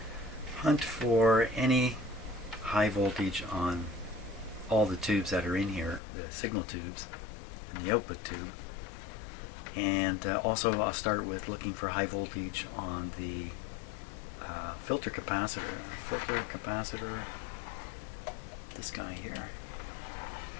hunt for any high voltage on all the tubes that are in here, the signal tubes and the output tube. And also I'll start with looking for high voltage on the filter capacitor. This guy here.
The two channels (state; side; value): drops out; right; at 6.0 s